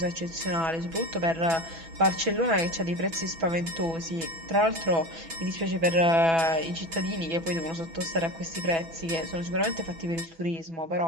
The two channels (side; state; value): left; late; 6.1 ms